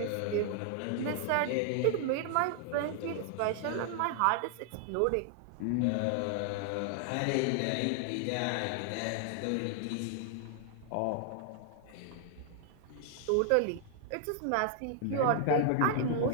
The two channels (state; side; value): different; both; correlation 0.00